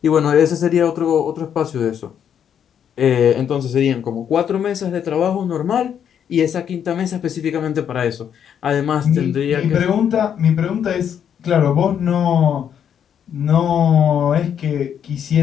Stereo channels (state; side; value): quieter; right; 8.6 dB